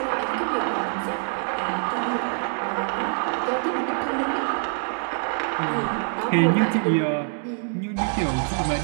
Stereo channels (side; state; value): left; silent; 58 dB below the other